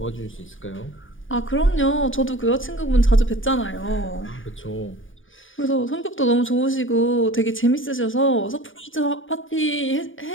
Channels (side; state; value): right; late; 0.57 ms